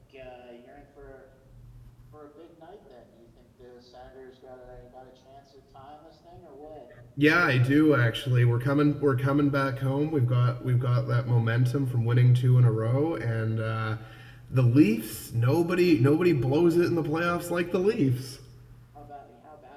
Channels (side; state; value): both; identical; correlation 1.00